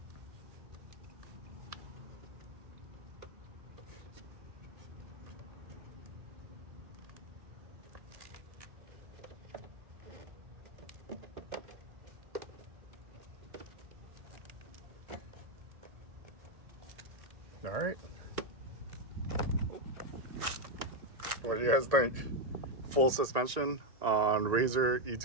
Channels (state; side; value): late; left; 1.8 ms